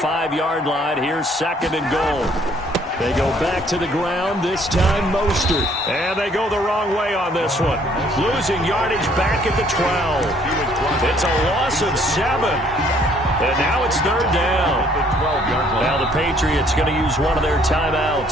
line. Here's 2nd and goal. They go back to the ground, this time Mostert. And they go the wrong way on this one. Losing yardage back at the 12. It's a loss of 7. And now it's 3rd down. Now the Patriots going to use one of their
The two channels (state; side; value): normal; both; correlation 0.62